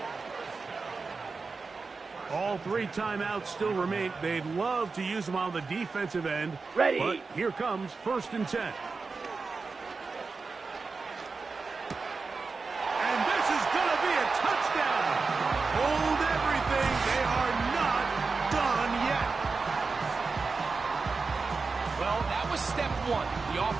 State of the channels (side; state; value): left; quieter; 4.3 dB